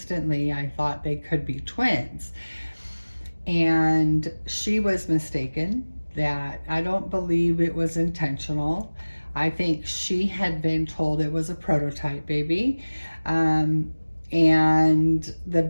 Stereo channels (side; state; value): both; inverted; correlation -1.00